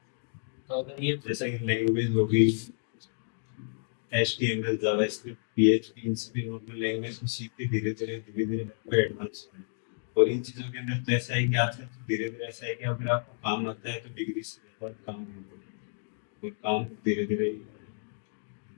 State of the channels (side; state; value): right; silent; digital silence